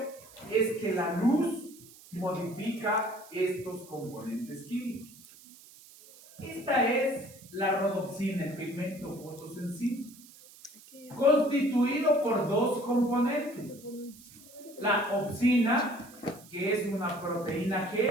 es que la luz modifica estos componentes químicos. Esta es la rodopsina, el pigmento fotosensible, constituido por dos componentes. La opsina, que es una proteína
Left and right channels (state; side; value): noise; right; hiss, 21 dB below the sound